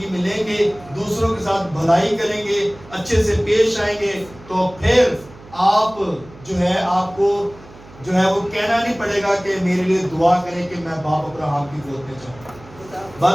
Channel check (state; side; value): noise; right; hum, 21 dB below the sound